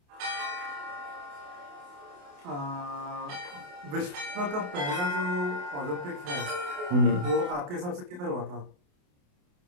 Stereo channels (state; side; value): late; left; 28 ms